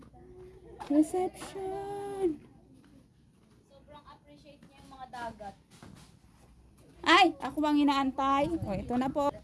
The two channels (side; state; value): both; identical; correlation 1.00